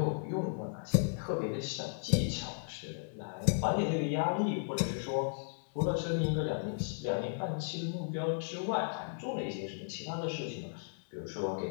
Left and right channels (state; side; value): silent; right; 54 dB below the other